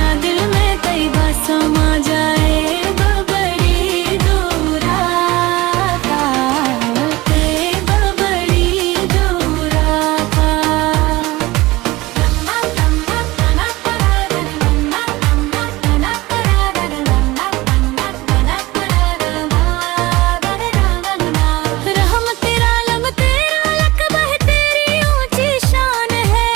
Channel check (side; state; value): left; quieter; 19.8 dB